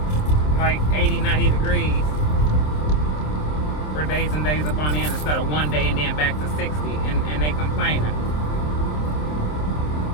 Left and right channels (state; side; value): late; right; 27 ms